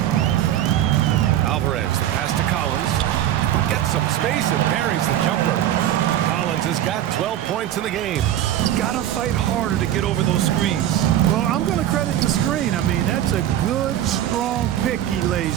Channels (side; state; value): left; quieter; 11.9 dB